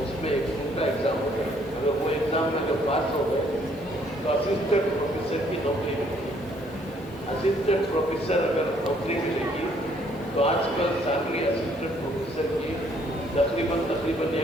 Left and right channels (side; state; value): left; noise; hiss, 28 dB below the sound